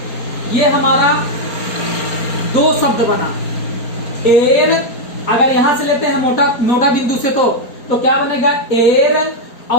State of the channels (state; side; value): late; right; 4.3 ms